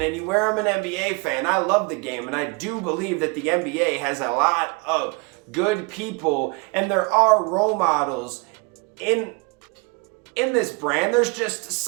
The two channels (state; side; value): quieter; left; 28.3 dB